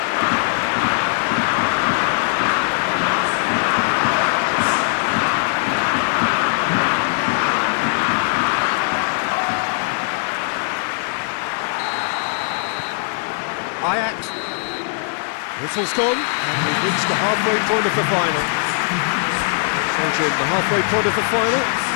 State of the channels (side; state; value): right; silent; 66 dB below the other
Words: Whistle's gone, and we've reached the halfway point of the final. So, Jim, the halfway point of the final,